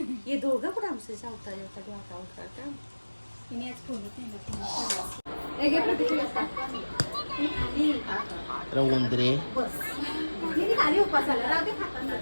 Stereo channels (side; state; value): both; inverted; correlation -1.00